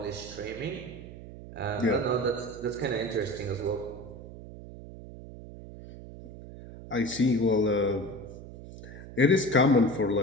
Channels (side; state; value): right; noise; hum, 14 dB below the sound